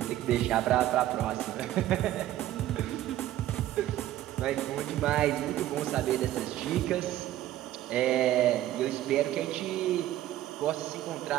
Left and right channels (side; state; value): left; quieter; 13.6 dB